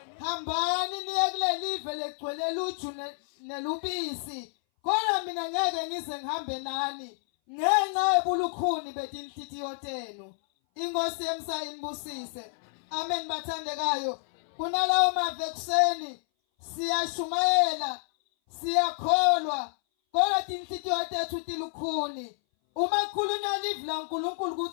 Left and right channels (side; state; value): right; silent; 58 dB below the other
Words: Hambani niye kuleli live legcwele luju nelubisi, kodwa mina ngeke ngize ngihambe nani ngenxa yebulukhuni betinhlitiyo tenu. Inkosi yemsayinibusise. Amen bathandekayo. Kunalawo mavekuseni siyashumayela, siyakholwa, kodwa tinhlitiyo tethu tilukhuni. Uma khulunywa live la uNkulunkulu